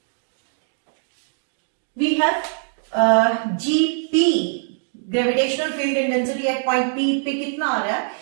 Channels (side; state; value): left; silent; digital silence